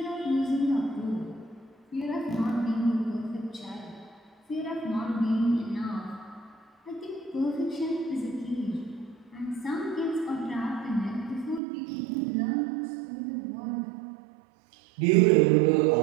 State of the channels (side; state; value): left; drops out; at 11.6 s